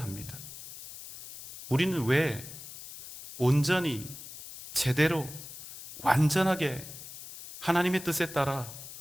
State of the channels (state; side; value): noise; left; hiss, 13 dB below the sound